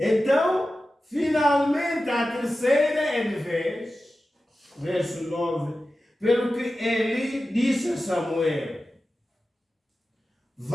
finalmente, a terceira é de vez, verso 9, pelo que Eli disse a Samuel:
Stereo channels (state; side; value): normal; both; correlation 0.94